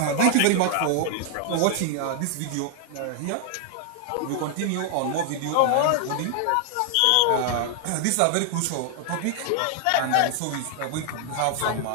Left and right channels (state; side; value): different; both; correlation 0.00